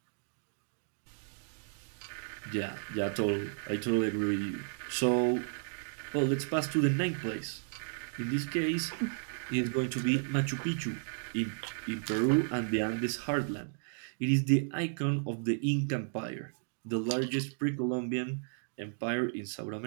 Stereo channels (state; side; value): silent; left; digital silence